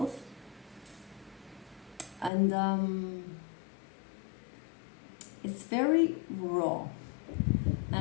And it's very raw,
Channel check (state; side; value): drops out; right; at 2.3 s